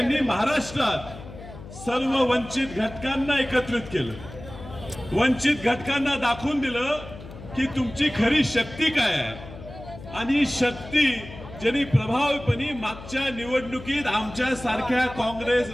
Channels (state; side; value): noise; left; hum, 15 dB below the sound